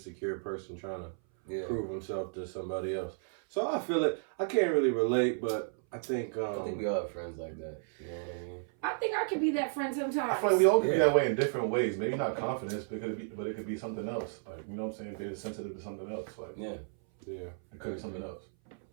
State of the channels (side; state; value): left; silent; 56 dB below the other